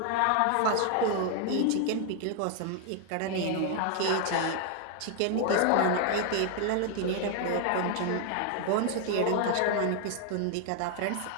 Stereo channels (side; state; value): both; different; correlation 0.00